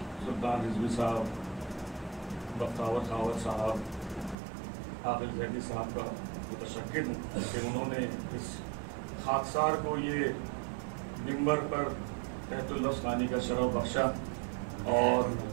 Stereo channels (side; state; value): left; drops out; at 4.4 s